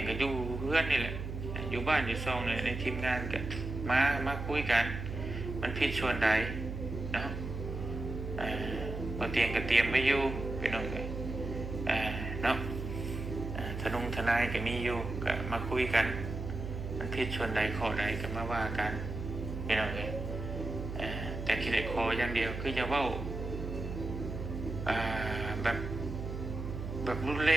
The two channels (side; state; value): right; noise; hum, 6 dB below the sound